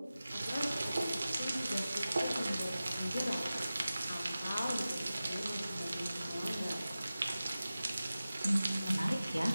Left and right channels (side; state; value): both; inverted; correlation -0.95